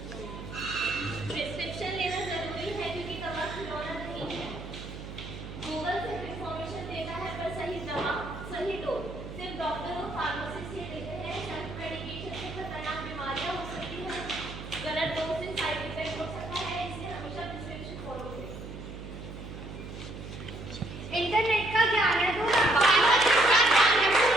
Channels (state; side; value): noise; right; hum, 10 dB below the sound